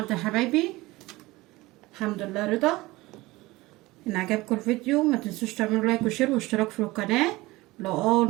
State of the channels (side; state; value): left; quieter; 20.2 dB